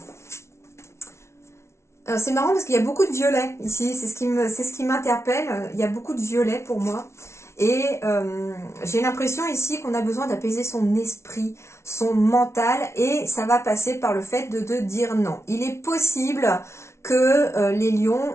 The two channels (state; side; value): late; right; 0.13 ms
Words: C'est marrant parce qu'il y a beaucoup de violets ici, c'est ce qui m'interpelle, il y a beaucoup de violets pour moi. Et j'ai l'impression ici qu'on a besoin d'apaiser son esprit, son mental, et ça va passer par le fait de dire non. Il est possible que les lions,